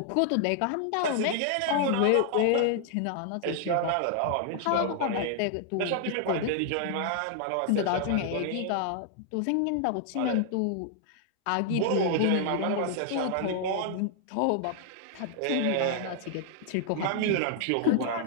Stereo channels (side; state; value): both; different; correlation 0.00